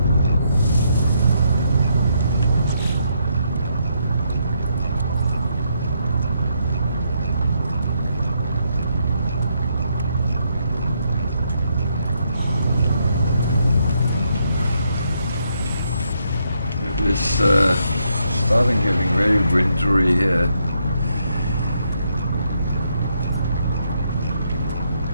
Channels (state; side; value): inverted; both; correlation -0.76